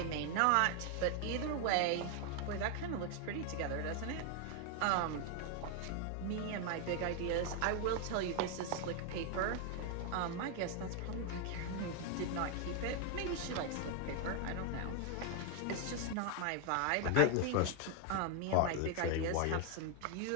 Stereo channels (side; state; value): both; different; correlation 0.01